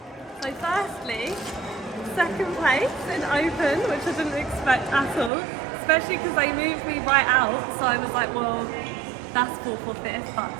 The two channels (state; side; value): drops out; left; at 5.3 s